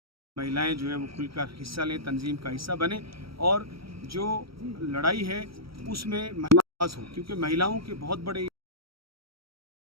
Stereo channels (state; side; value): late; left; 0.75 ms